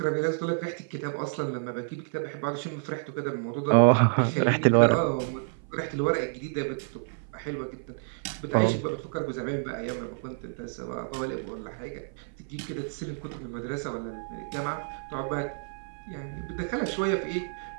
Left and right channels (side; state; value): left; silent; 56 dB below the other